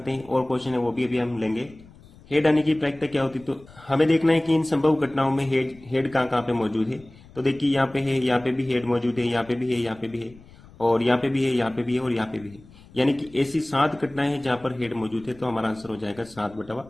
हैं, और क्वेश्चन है वो भी अभी हम लेंगे। हेड आने की प्रायिकता क्या होती है, तो हमें देखना है कि इन संभव घटनाओं में हेड कहाँ कहाँ पे मौजूद है। तो देखिए यहाँ पे है, यहाँ पे भी हेड मौजूद है, यहाँ पे भी है, यहाँ पे भी है, और यहाँ पे भी है, यहाँ पे भी है, और यहाँ पे भी है। यानी कि ऐसी 7 घटनाएं हैं जहां पर हेड मौजूद है, तो हमारा आंसर हो जाएगा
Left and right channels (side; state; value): left; noise; rumble, 23 dB below the sound